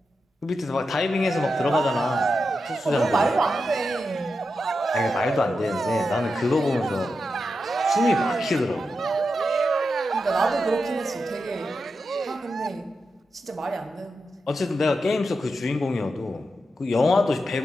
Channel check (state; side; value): normal; both; correlation 0.88